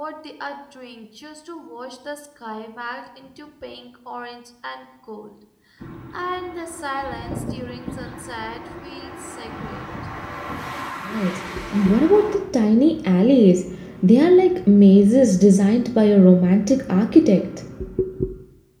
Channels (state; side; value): identical; both; correlation 1.00